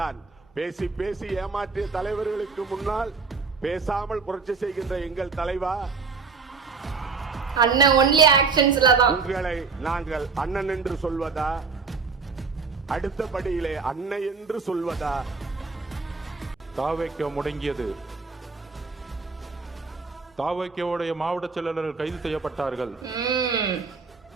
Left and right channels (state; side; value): quieter; left; 4.8 dB